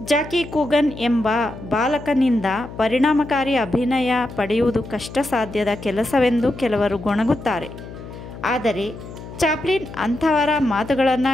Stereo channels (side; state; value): left; noise; hum, 13 dB below the sound